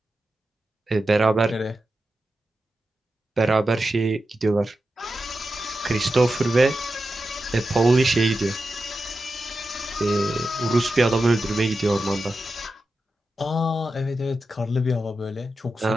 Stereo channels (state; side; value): normal; both; correlation 0.90